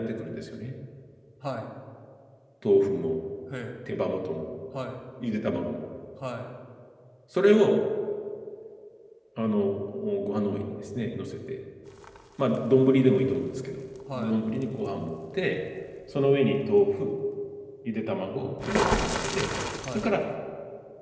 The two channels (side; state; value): both; identical; correlation 1.00